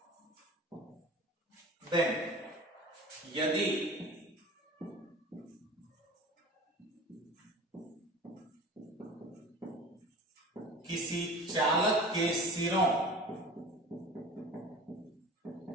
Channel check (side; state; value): both; normal; correlation 0.38